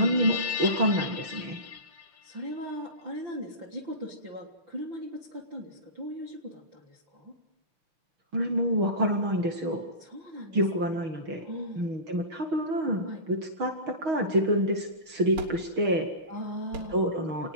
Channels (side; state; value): left; late; 6.3 ms